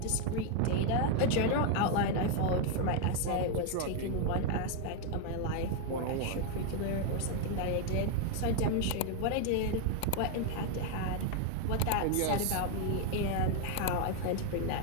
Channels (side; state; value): both; different; correlation 0.00